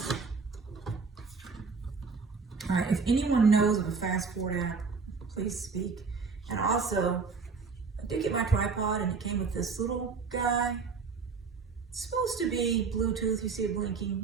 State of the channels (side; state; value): left; quieter; 4.9 dB